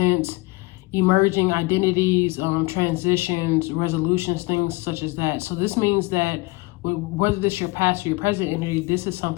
emerging identities, transitions, resolutions, things such as that. So this means that whether this is your past or your present energy, this is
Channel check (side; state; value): right; quieter; 23.7 dB